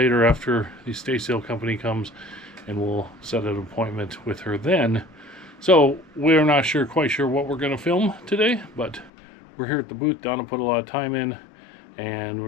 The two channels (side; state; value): right; drops out; at 9.1 s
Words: after the estate sale company comes, and we'll set an appointment with her then. So we're not quite sure what we're going to film today, but we're here at the booth. Donna put a lot of time in, and